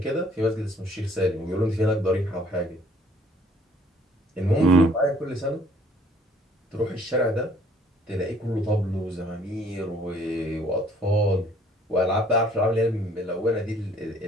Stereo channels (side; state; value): both; normal; correlation 0.60